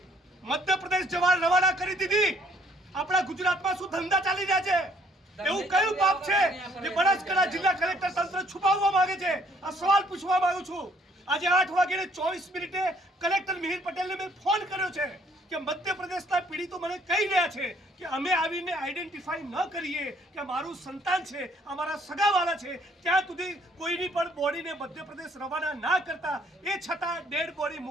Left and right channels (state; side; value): normal; both; correlation 0.64